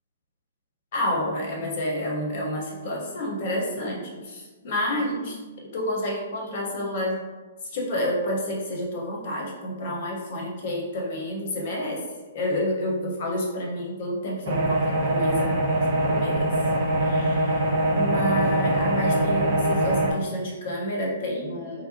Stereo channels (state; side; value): inverted; both; correlation -0.52